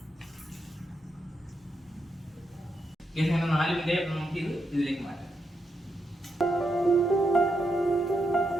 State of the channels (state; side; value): normal; both; correlation 0.83